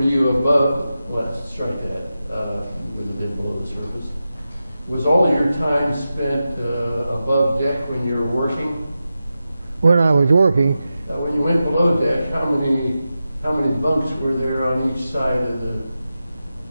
you above? Let's strike that. Would have been below the surface. Was all your time spent above deck when you were working? When I was working, When you went below deck, how many bunks were there on each side of the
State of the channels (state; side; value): inverted; both; correlation -0.92